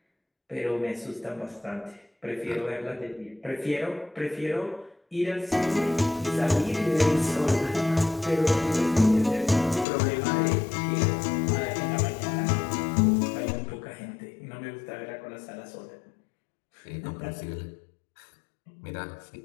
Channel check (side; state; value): right; drops out; at 9.9 s